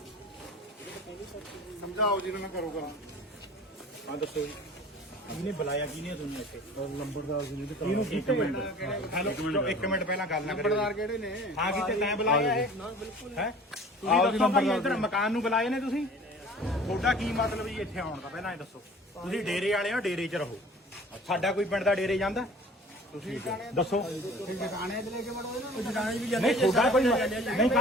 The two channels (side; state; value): both; normal; correlation 0.46